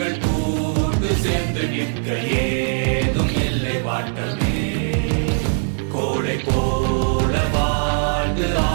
கூட்டு சேர்ந்து நிற்க ஏதும் இல்லை வாட்டமே. கோளை போல வாழ்ந்து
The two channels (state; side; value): silent; left; digital silence